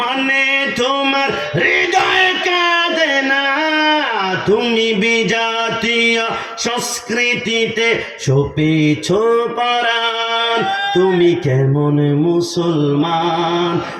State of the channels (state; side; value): identical; both; correlation 1.00